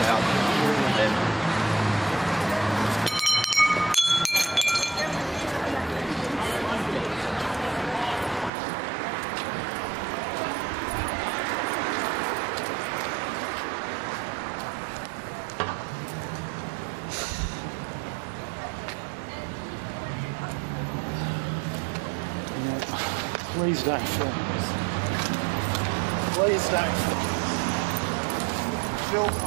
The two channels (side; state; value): left; drops out; at 8.5 s